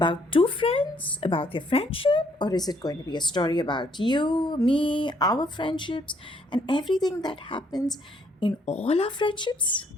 two friends? About their friendship? Or is it going to be a story about you, me, our friendships, and everything that happens in all our friendships?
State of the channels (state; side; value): normal; both; correlation 0.68